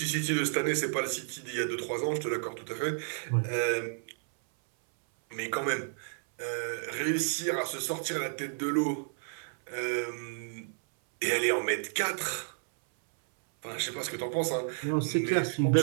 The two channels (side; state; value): left; silent; 57 dB below the other